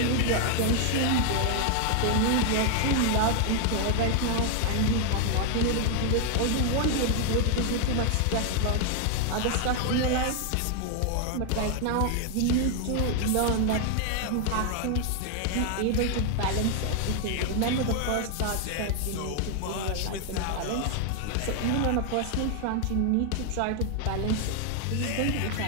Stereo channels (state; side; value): different; both; correlation 0.00